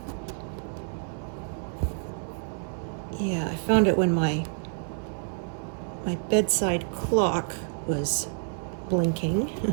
yeah, I found it when my bedside clock was blinking,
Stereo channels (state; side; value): silent; left; digital silence